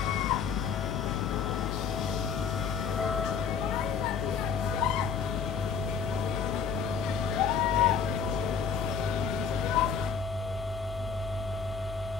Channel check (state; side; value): quieter; right; 6.6 dB